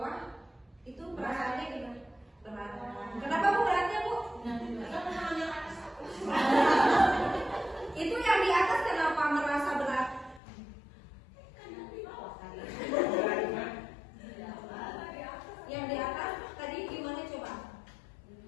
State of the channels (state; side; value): drops out; right; at 10.4 s